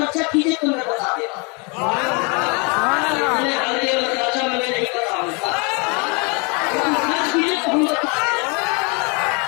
कीजिए तो मैं बता देगा, खर्चा मैं नहीं बताऊंगा, खर्च कीजिए तो हम बता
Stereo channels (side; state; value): right; quieter; 32.1 dB